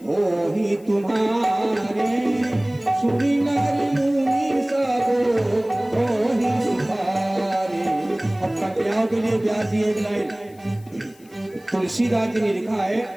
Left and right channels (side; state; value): left; noise; hiss, 28 dB below the sound